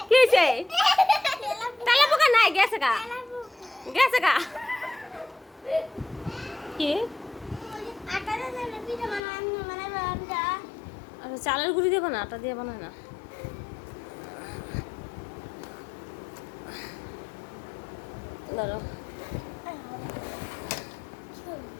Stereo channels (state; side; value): drops out; right; at 9.2 s